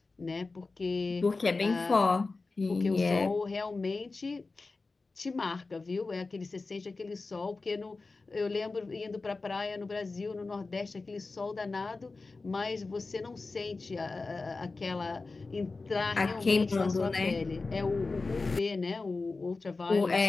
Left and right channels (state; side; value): quieter; right; 3.7 dB